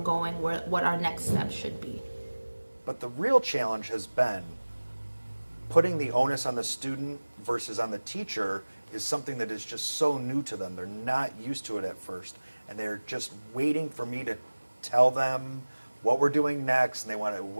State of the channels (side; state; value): both; inverted; correlation -1.00